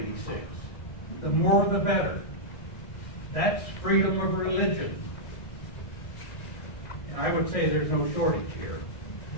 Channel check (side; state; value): right; late; 1.6 ms